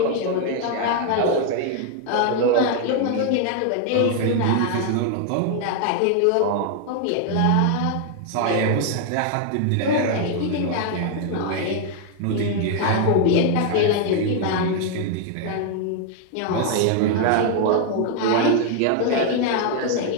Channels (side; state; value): both; different; correlation 0.00